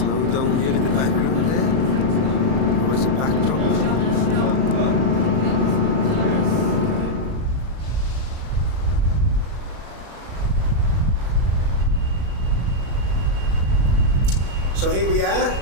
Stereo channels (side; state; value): left; late; 36 ms